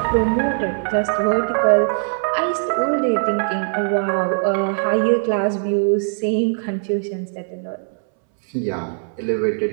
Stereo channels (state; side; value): silent; left; 65 dB below the other